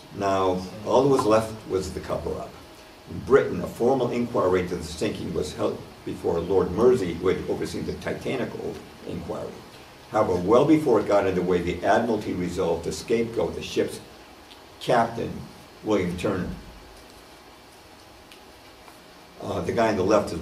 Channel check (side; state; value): both; identical; correlation 1.00